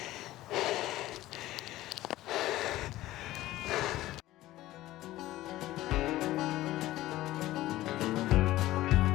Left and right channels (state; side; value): quieter; right; 16.0 dB